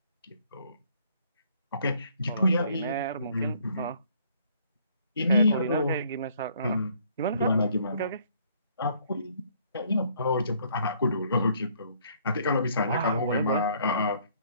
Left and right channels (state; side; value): inverted; both; correlation -0.63